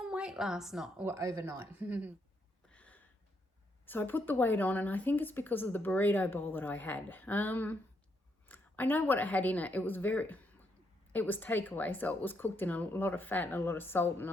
weight last night or overnight. So I put the weight on, and I think it's because of the burrito bowl that I had. I know what it had in it. It was takeaway, so it was cooked in a lot of fat and a lot of salt and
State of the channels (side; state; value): both; normal; correlation 0.77